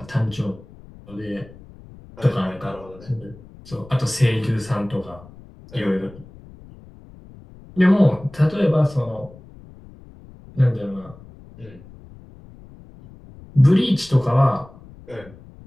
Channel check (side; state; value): left; noise; rumble, 21 dB below the sound